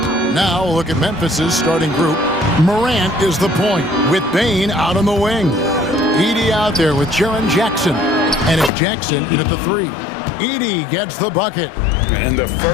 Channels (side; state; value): right; drops out; at 8.7 s